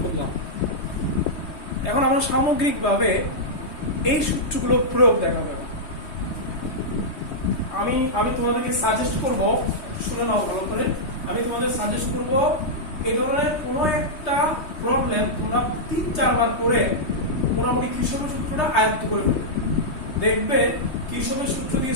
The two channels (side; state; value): right; late; 3.2 ms